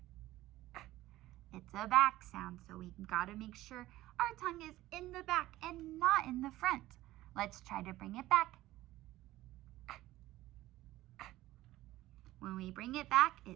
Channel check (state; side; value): quieter; left; 16.3 dB